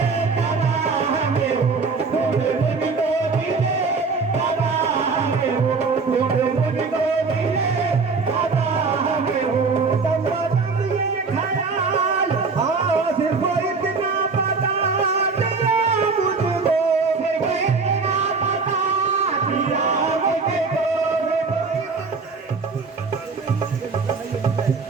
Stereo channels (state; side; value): quieter; left; 4.5 dB